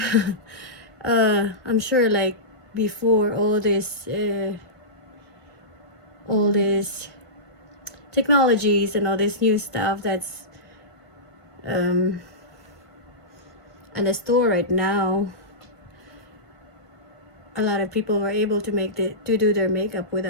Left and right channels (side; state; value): right; late; 1.5 ms